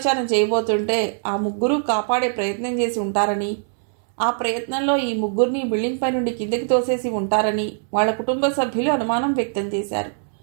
చేయబోతుంటే ఆ 3 కాపాడే ప్రయత్నం చేసి ఉంటారని, ఆ ప్రయత్నంలో ఈ 3 బిల్డింగ్ పై నుండి కిందకి తోసేసి ఉంటారని వాళ్ళ కుటుంబ సభ్యులు అనుమానం వ్యక్తం చేశారు.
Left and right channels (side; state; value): left; silent; digital silence